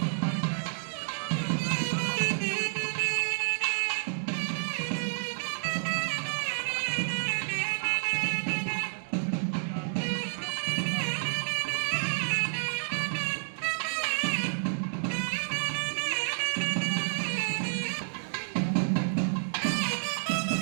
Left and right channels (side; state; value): left; silent; digital silence